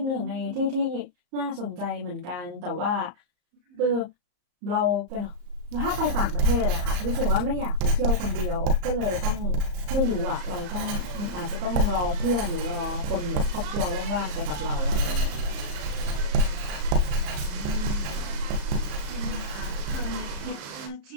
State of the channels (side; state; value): left; late; 34 ms